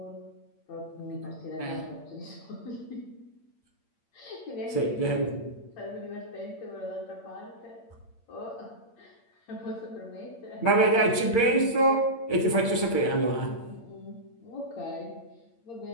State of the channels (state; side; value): late; right; 8.7 ms